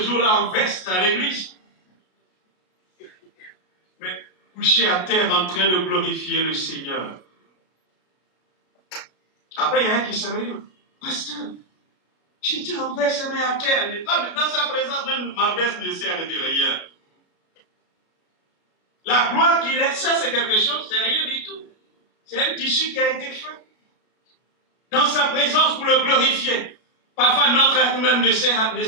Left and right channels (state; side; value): late; right; 33 ms